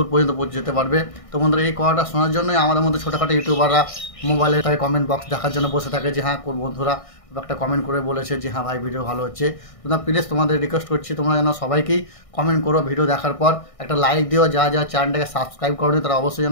পর্যন্ত যেতে পারবে। তো বন্ধুরা এই কথাটা শোনার জন্যই আমাদের মধ্যে ছোটোখাটো ইউটিউবাররা মোবাইলে তাই কমেন্ট বক্স দেখার জন্য বসে থাকে যে হ্যাঁ বন্ধুরা একটা কমেন্ট করে বলেছে যে হ্যাঁ ভাই ভিডিও ভালো হচ্ছে। তোমরা প্লিজ তোমাদের রিকোয়েস্ট করছি তোমরা যেন সবাইকেই কমেন্ট করো, ভিডিও দেখার পর একটা লাইক দিও। যা চ্যানেলটাকে সাবস্ক্রাইব করো তারা অবশ্যই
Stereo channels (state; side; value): late; right; 1.6 ms